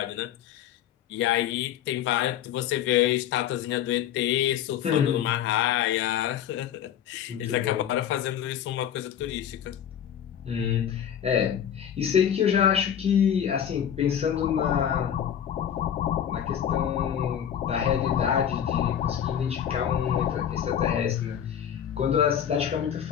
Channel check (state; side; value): quieter; right; 9.5 dB